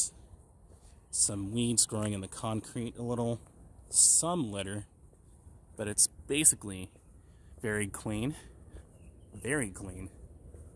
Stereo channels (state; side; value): identical; both; correlation 1.00